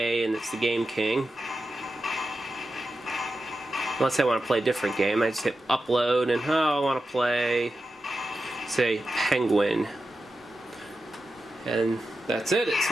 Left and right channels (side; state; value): both; normal; correlation 0.91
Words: and it's the Game King. Let's say I want to play a different game. I just hit upload and I want to play, say, Penguin. And that's it. It's